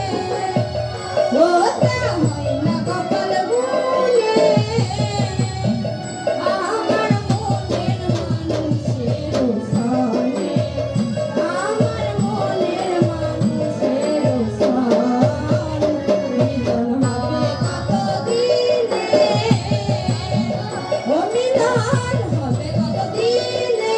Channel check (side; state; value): both; identical; correlation 1.00